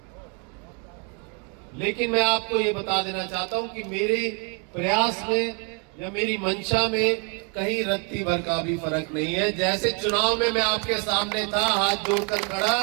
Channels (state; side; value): quieter; left; 36.1 dB